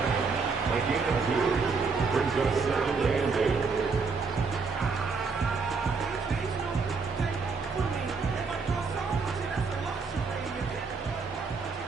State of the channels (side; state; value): left; quieter; 4.7 dB